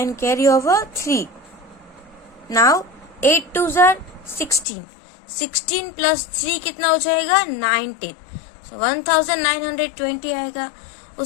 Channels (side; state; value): right; drops out; at 4.7 s